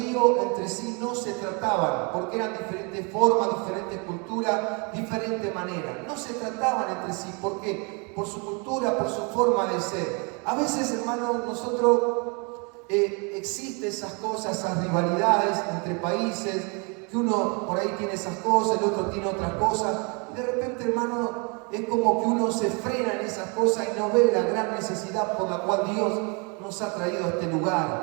entre sí no se trataban, porque eran diferentes formas, diferentes culturas, diferente manera. No se trataban entre sí, ¿por qué? Por su cultura, por su forma de ser. A veces, hermanos, existen esas cosas, esas rivalidades entre países, que uno por ahí tiene esas cosas, el otro tiene otras cosas, y de repente, hermano, es como que uno se frena en esas cosas y no ve la gran necesidad por la cual Dios nos ha traído a este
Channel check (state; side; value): quieter; left; 33.0 dB